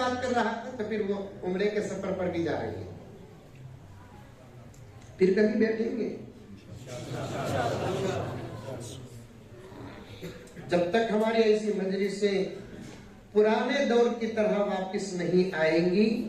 कर रहा था, तो फिर वो उम्रे के सफर पर भी जा रही है। फिर कभी बैठेंगे जब तक हमारी ऐसी मजलिसें पुराने दौर की तरह वापस नहीं आएंगी।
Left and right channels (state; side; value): identical; both; correlation 1.00